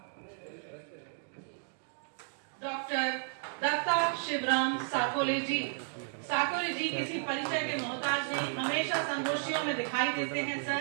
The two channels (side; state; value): left; silent; digital silence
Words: डॉक्टर दत्ता शिवराम साकोली जी किसी परिचय के मोहताज नहीं, हमेशा संगोष्ठियों में दिखाई देते हैं।